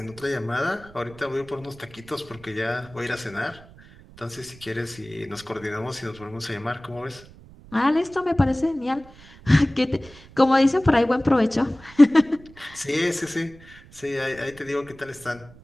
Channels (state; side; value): noise; right; rumble, 22 dB below the sound